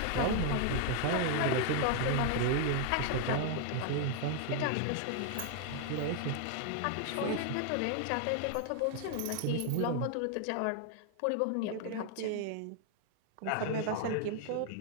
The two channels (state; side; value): different; both; correlation 0.00